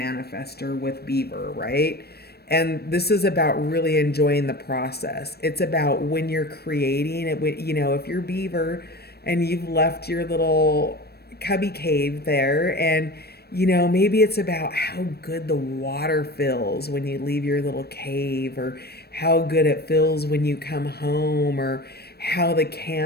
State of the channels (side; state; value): right; late; 0.47 ms